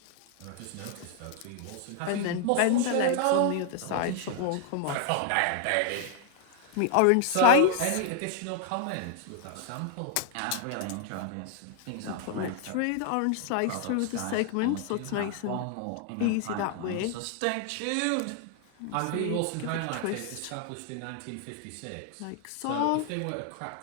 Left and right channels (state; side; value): different; both; correlation 0.00